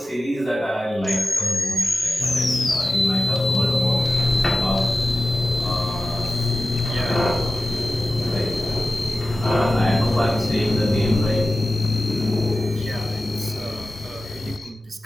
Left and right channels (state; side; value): normal; both; correlation 0.94